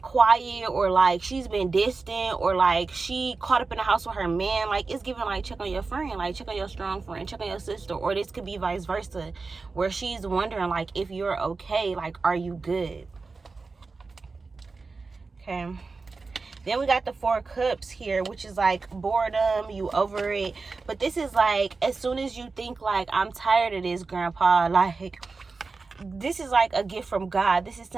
or like she's been distant or like she caught up in the house with her man, like it's giving like check on your friend, like check on your strong friend, check on your sister. Or this could be vice versa, where she's wondering like if you're okay, like are you good? Okay. Then we got the 4 cups here, which is like boredom, you over it. But this is like, as soon as you think like, I'm tired of this, grandpa, like, this is like a gift from God. This is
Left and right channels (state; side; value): quieter; left; 4.1 dB